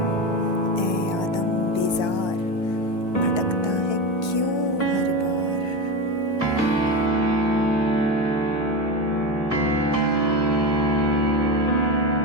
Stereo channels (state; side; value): late; right; 1.3 ms